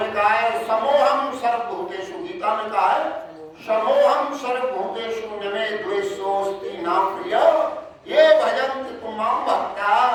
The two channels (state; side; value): identical; both; correlation 1.00